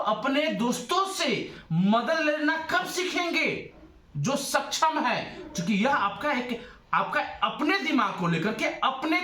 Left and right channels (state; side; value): identical; both; correlation 1.00